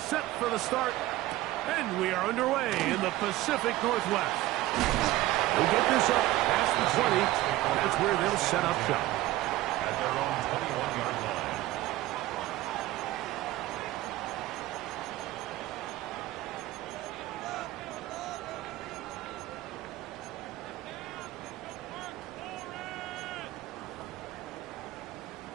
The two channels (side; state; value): left; quieter; 16.6 dB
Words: for the start, and we are underway in the Pacific Northwest. We'll get this up past the 20. That's where they'll set up shop. At their own 21-yard line.